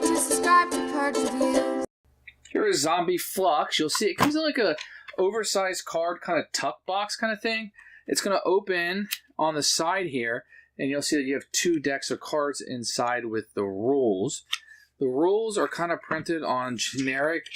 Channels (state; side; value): identical; both; correlation 1.00